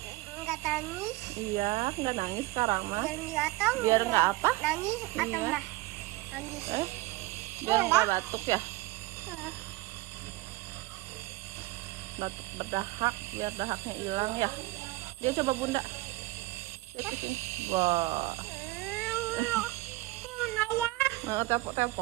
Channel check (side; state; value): left; quieter; 19.2 dB